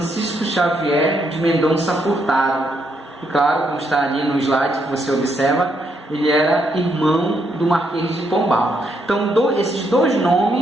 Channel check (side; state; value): both; normal; correlation 0.76